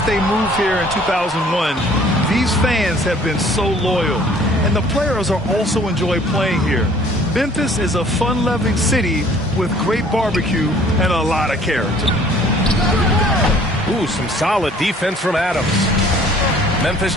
they moved here in 2001, these fans have been so loyal. And the players are also enjoy playing here. Memphis is a fun-loving city with great barbecue and a lot of character. Ooh, some solid defense from Adams. Memphis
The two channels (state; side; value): normal; both; correlation 0.55